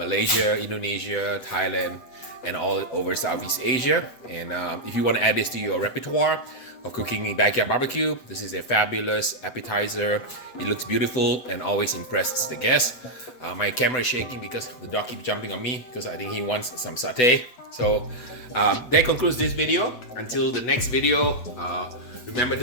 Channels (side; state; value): right; late; 8.1 ms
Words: Indonesia, Thailand, and all over Southeast Asia. And if you want to add this to your repertoire of cooking backyard barbecue, this is a fabulous appetizer. It looks beautiful and always impresses the guests. My camera is shaking because the dog keeps jumping on me because I think he wants some satay. So that concludes this video. Until the next video, remember